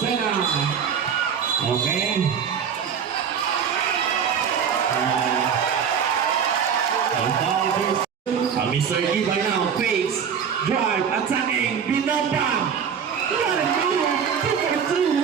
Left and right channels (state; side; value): quieter; left; 7.4 dB